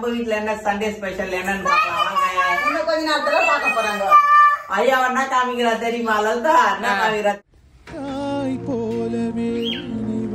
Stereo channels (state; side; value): identical; both; correlation 1.00